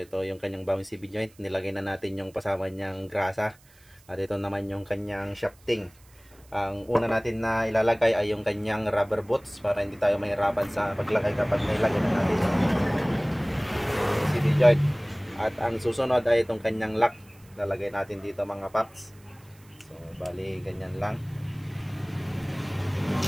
yung kanyang bagong CB joint. Nilagay na natin yung pasama niyang grasa. At ito naman yung kanyang shafting. Ang una natin na ilalagay ay yung kanyang rubber boots para hindi tayo mahirapan sa paglagay kapag nilagay na natin yung CB joint. At ang susunod ay itong kanyang lock. Lalagay natin dito mga paps. So bali ganyan lang.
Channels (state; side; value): noise; right; hiss, 28 dB below the sound